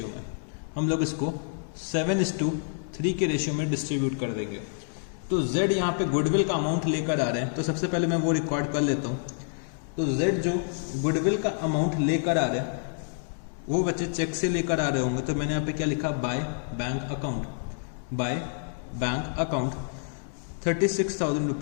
में। हम लोग इसको 7:3 के रेशियो में डिस्ट्रीब्यूट कर देंगे। तो Z यहाँ पे गुडविल का अमाउंट लेकर आ रहे हैं। तो सबसे पहले मैं वो रिकॉर्ड कर लेता हूँ। तो Z जो गुडविल का अमाउंट लेकर आ रहे हैं वो बच्चे चेक से लेकर आ रहे होंगे। तो मैंने यहाँ पे क्या लिखा? By bank account. By bank account 36,000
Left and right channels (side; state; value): right; silent; digital silence